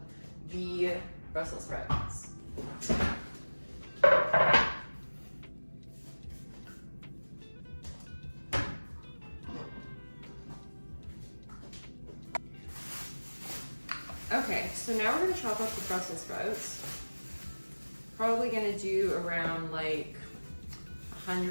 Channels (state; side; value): inverted; both; correlation -1.00